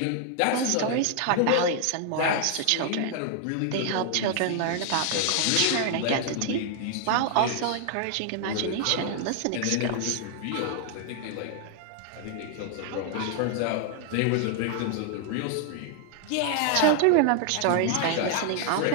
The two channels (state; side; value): different; both; correlation 0.00